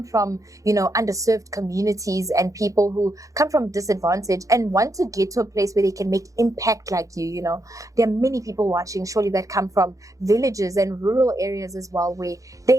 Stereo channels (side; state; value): left; late; 0.16 ms